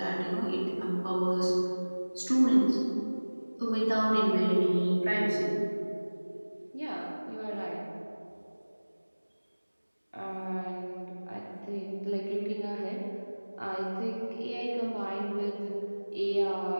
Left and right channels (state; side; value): inverted; both; correlation -1.00